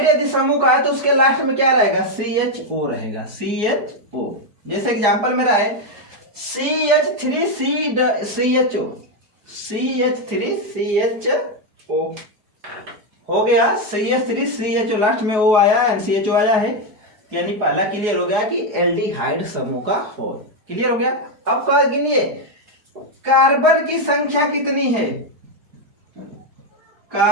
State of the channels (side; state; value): left; late; 4.8 ms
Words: यदि समूह का है तो उसके लास्ट में क्या रहेगा, CHO रहेगा, CHO। जैसे एग्जांपल मेरा है CH3CHO, CH3CHO हो गया, CH3CHO लास्ट में O आया एंड CHO आया है, यानी पहला क्लियर हो गया कि एल्डिहाइड समूह का हो। क्लियर हो गया। अब क्या गिनिए, कार्बन की संख्या कितनी है,